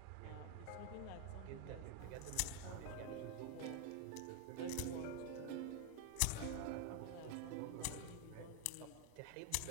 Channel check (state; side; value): different; both; correlation 0.01